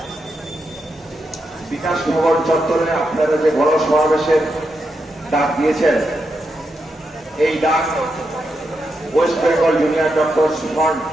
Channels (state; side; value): normal; both; correlation 0.84